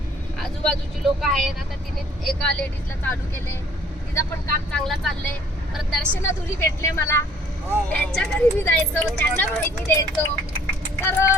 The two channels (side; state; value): both; normal; correlation 0.58